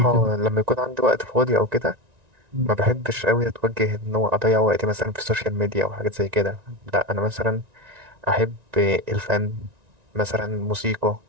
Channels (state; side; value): late; left; 1.9 ms